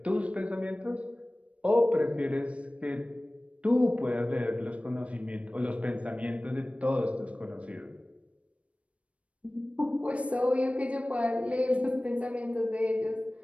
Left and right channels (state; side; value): late; left; 0.063 ms